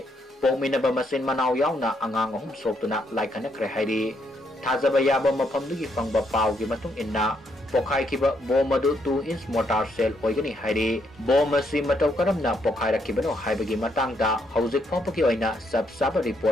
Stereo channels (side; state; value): both; normal; correlation 0.75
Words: Pokhaiba manaw na angang humsok na laikan na HAIRI Thazaba yaba mapamdugi pangba pao ki matong inna Pokhaikhiba bomadu 2-inch mortar shell oigani HAIRI bomasi mataw karam na Pokhaikhiba no haibagi matangda hauzik phapaki oina sab